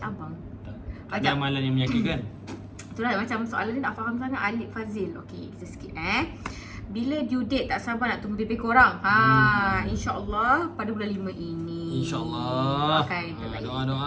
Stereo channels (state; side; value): identical; both; correlation 1.00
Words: Tak ada amalan yang menyakitkan. Itulah macam soalan ni tak faham sangat. Alif Fazil. Okey, kita skip Bila due date, tak sabar nak tunggu baby korang. InsyaAllah pada bulan 5 ini. InsyaAllah.